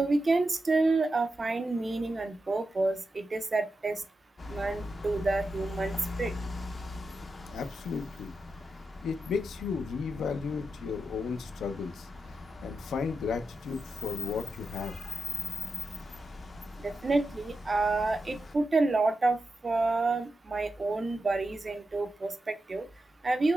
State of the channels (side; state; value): both; normal; correlation 0.89